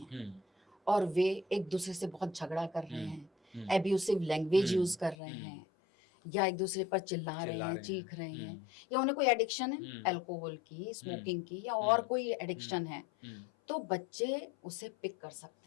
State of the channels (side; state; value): right; drops out; at 5.2 s